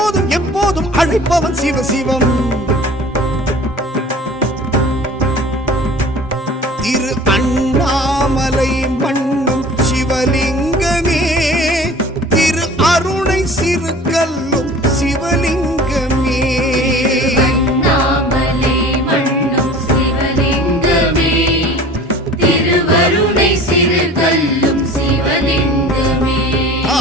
எப்போதும் அழைப்பவன் சிவசிவம். திரு அண்ணாமலை மண்ணும் சிவலிங்கமே, திரு அருணை சிறு கல்லும் சிவலிங்கமே, அண்ணாமலை மண்ணும் சிவலிங்கமே, திருவருணை சிறு கல்லும் சிவலிங்கமே.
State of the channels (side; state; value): both; normal; correlation 0.43